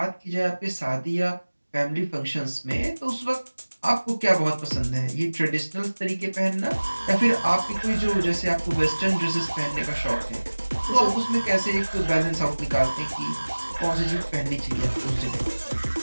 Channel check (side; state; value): both; inverted; correlation -1.00